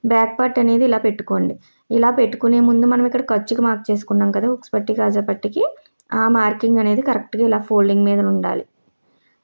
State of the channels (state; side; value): inverted; both; correlation -1.00